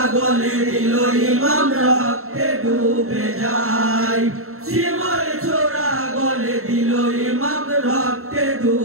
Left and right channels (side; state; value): left; late; 0.63 ms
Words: গলে দিল ইমাম রক্তে ডুবে যায় শিমর ছোড়া গলে দিল ইমাম রক্তে